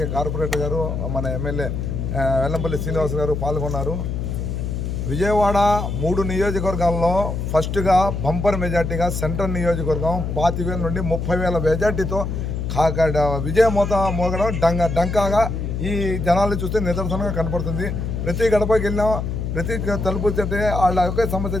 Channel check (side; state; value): left; noise; hum, 3 dB below the sound